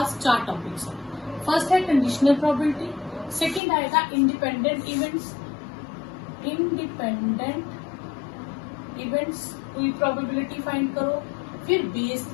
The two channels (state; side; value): drops out; right; at 3.6 s